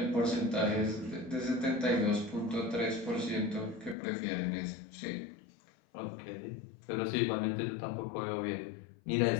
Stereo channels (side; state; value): right; drops out; at 4.0 s